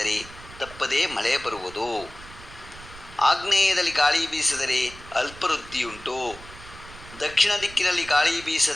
ತಪ್ಪದೇ ಮಳೆ ಬರುವುದು. ಆಗ್ನೇಯದಲ್ಲಿ ಗಾಳಿ ಬೀಸಿದರೆ ಅಲ್ಪವೃದ್ಧಿಯುಂಟು. ದಕ್ಷಿಣ ದಿಕ್ಕಿನಲ್ಲಿ ಗಾಳಿ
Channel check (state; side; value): noise; right; rumble, 18 dB below the sound